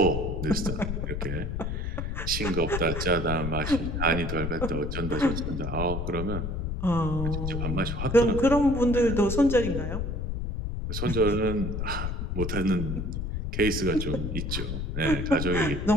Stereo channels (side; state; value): left; noise; rumble, 3 dB below the sound